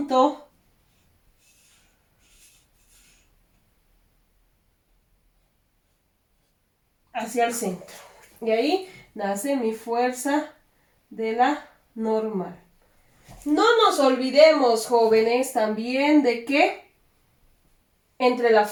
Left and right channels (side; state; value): both; identical; correlation 1.00